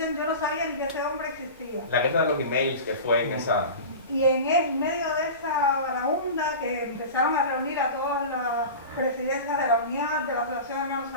yo no sabía ni que ese hombre existía. La guerra de los emails que fue en esa... Y en medio de esa vagabunda que empezaron a reunir a todas las presidencias de la Unión, de la Asociación de Hermanos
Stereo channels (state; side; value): inverted; both; correlation -0.32